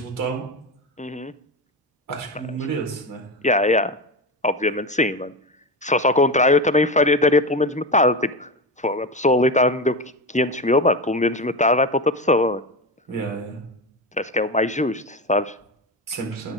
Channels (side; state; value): both; normal; correlation 0.20